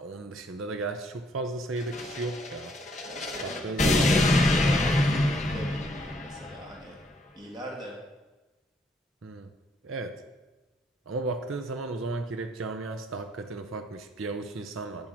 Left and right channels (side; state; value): both; normal; correlation 0.68